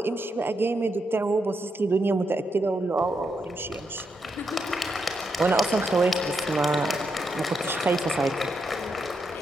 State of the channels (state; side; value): normal; both; correlation 0.82